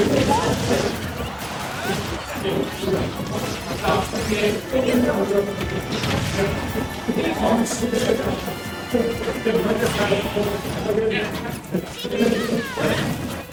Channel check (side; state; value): both; identical; correlation 1.00